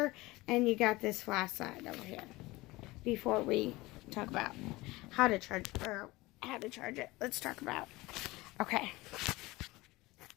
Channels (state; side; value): quieter; right; 20.7 dB